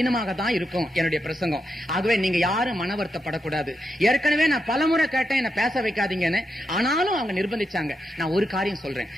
தான் இருக்கும் என்னுடைய பிரசங்கம். ஆகவே நீங்க யாரும் மன வருத்தப்படக்கூடாது. ஏற்கனவே நான் பலமுறை கேட்டேன் என்ன பேச வைக்காதீங்கன்னு, ஆனாலும் அவங்க நிர்பந்திச்சாங்க. நான் ஒரு காரியம் சொல்றேன்,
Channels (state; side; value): normal; both; correlation 0.85